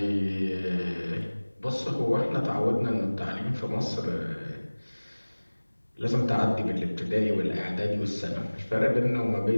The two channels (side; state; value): both; inverted; correlation -1.00